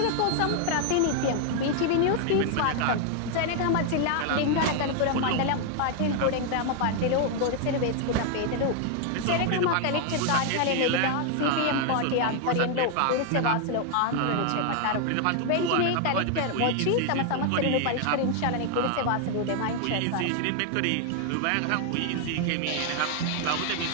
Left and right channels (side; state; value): both; different; correlation 0.00